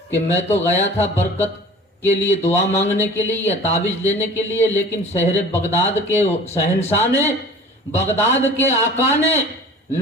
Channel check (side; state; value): both; normal; correlation 0.44